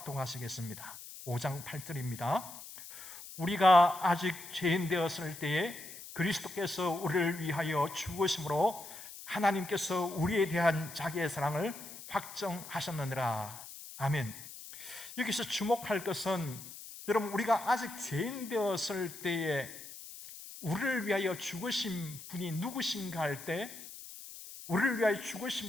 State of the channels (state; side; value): noise; left; hiss, 13 dB below the sound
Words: 5장 8절입니다. 우리가 아직 죄인 되었을 때에 그리스도께서 우리를 위하여 죽으심으로 하나님께서 우리에 대한 자기의 사랑을 확정하셨느니라. 아멘. 여기서 주목할 것은 여러분, 우리가 아직 죄인 되었을 때에 우리를 위하여 죽으신 분이 누구신가 할 때, 우리를 위하여